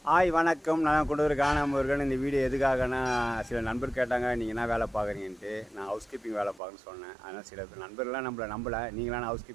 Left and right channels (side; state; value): left; drops out; at 6.6 s